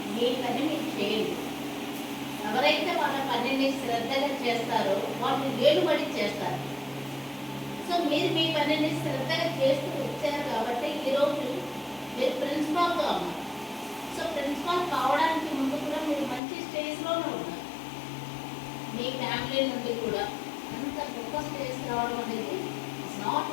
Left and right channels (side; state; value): right; drops out; at 16.4 s